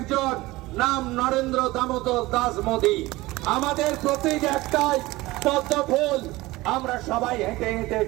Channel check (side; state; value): left; quieter; 19.6 dB